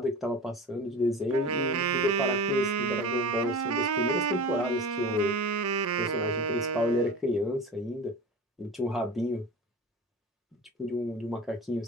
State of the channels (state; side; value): normal; both; correlation 0.33